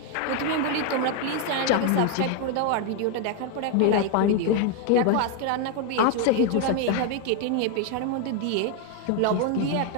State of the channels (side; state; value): both; different; correlation 0.01